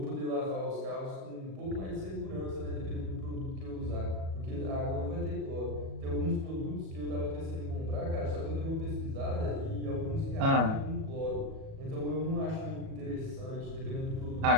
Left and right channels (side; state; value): left; late; 37 ms